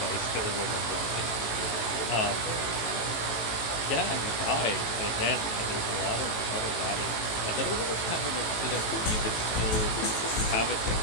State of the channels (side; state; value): right; late; 18 ms